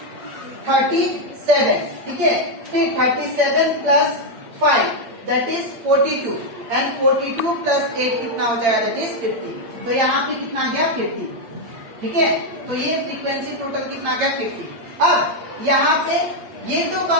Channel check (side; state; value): left; late; 8.8 ms